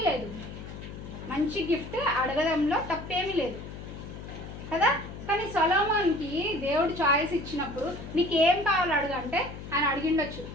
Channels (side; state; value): left; noise; hum, 11 dB below the sound